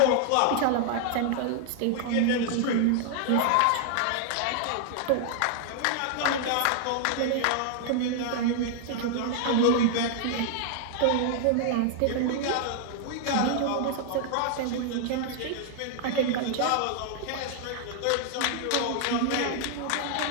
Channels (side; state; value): both; different; correlation -0.01